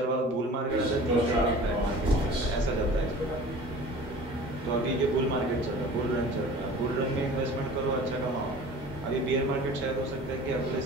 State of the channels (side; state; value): both; normal; correlation 0.42